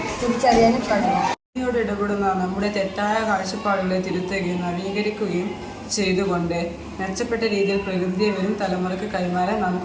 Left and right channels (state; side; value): identical; both; correlation 1.00